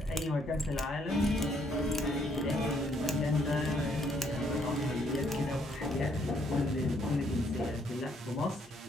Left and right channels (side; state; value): both; normal; correlation 0.70